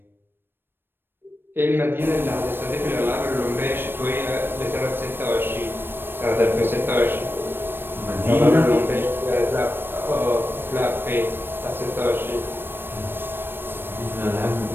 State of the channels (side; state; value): left; late; 0.098 ms